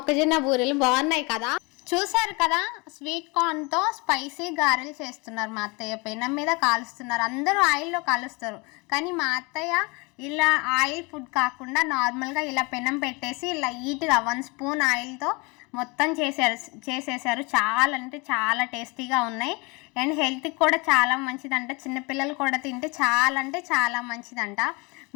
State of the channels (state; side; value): quieter; right; 27.8 dB